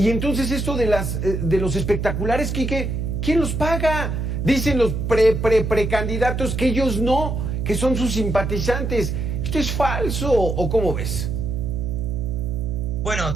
entonces esto de los espectaculares, Quique, ¿quién los paga? Dicen los precandidatos que ellos no, que son sus simpatizantes. ¿Esto es falso o cómo ves? Bueno,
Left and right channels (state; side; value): noise; right; hum, 2 dB below the sound